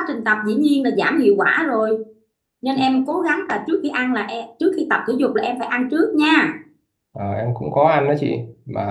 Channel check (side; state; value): both; identical; correlation 1.00